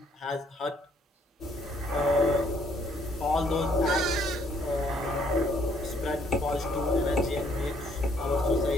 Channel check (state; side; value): normal; both; correlation 0.66